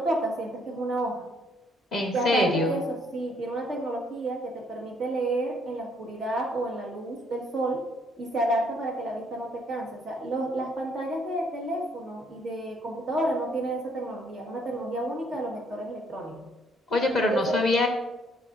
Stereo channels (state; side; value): normal; both; correlation 0.67